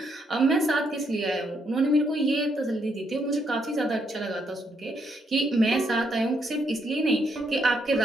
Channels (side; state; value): both; normal; correlation 0.75